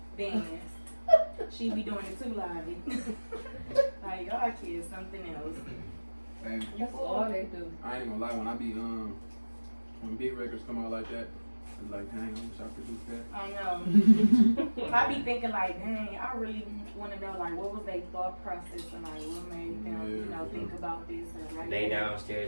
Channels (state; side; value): inverted; both; correlation -1.00